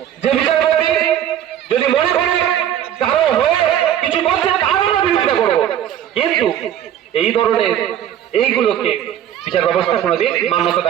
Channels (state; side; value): quieter; left; 10.6 dB